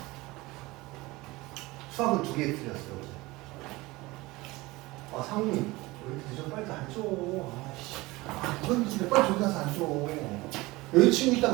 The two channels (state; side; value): quieter; left; 21.1 dB